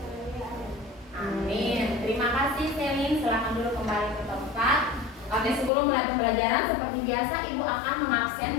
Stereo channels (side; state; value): right; drops out; at 5.7 s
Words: Amin. Terima kasih Selin. Silakan dulu kembali ke tempat. Oke, sebelum mulai pembelajaran seperti biasa ibu akan